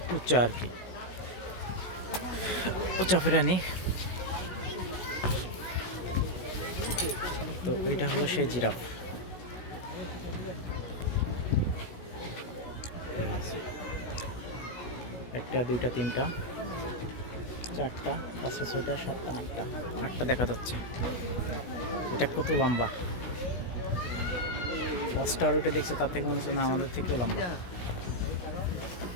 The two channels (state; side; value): late; right; 16 ms